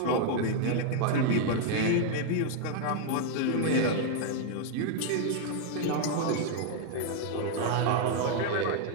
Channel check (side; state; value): both; different; correlation 0.00